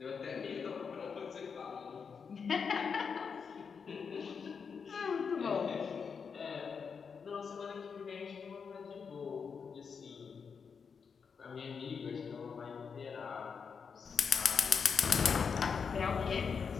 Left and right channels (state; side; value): quieter; right; 6.0 dB